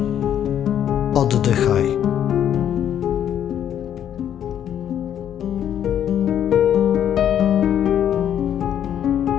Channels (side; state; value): right; quieter; 9.9 dB